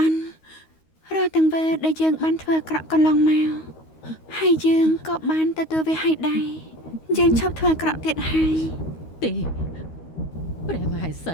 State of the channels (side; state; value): right; late; 13 ms